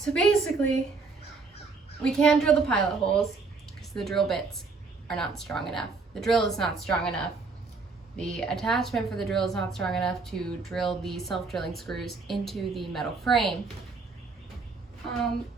basically, we can't drill the pilot holes because the drill bits are not strong enough. The drill is not strong enough. The attachment for the drill is not strong enough to drill the self-drilling screws into the metal frame.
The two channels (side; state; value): left; quieter; 4.2 dB